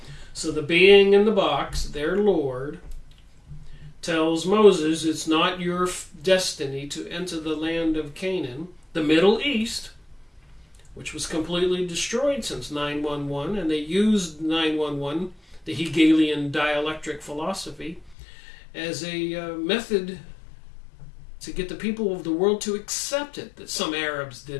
So the being in the box, their Lord, tells Moses it's not your destiny to enter the land of Canaan, the Middle East, which was completely destroyed since 9/11, and they used 9/11 the Hegelian dialectic philosophy, as a method to get the people of the world to accept it, that some Arabs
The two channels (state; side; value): drops out; right; at 18.2 s